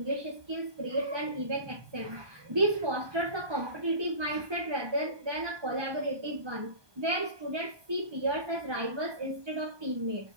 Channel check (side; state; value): left; late; 1.2 ms